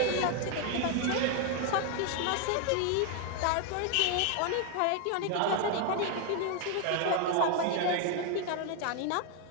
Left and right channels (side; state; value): both; different; correlation 0.01